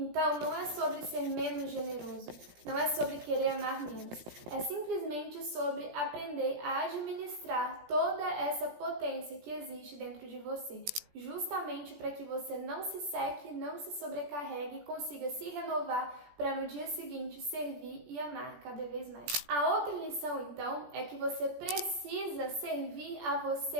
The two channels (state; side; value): late; left; 17 ms